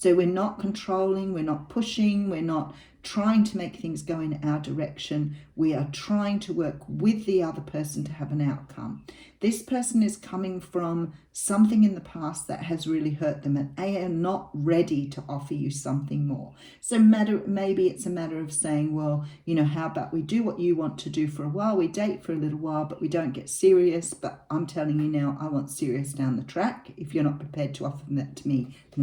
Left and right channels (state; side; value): identical; both; correlation 1.00